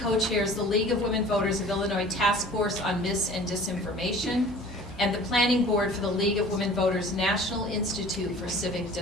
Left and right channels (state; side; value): normal; both; correlation 0.45